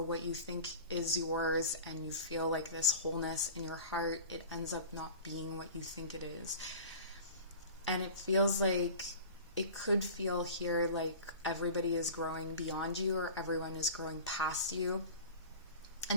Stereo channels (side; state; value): both; inverted; correlation -0.38